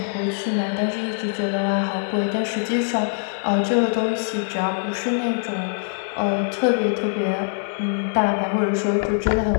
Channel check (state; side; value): silent; right; digital silence